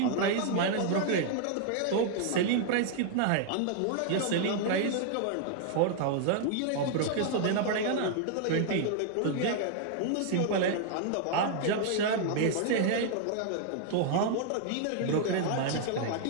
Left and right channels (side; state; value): both; different; correlation -0.01